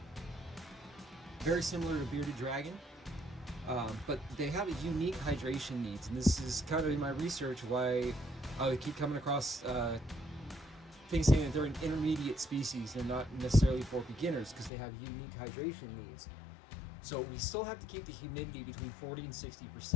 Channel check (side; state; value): right; drops out; at 14.7 s